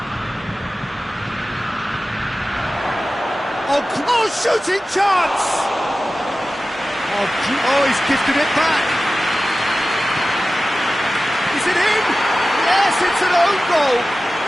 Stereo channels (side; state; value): both; normal; correlation 0.95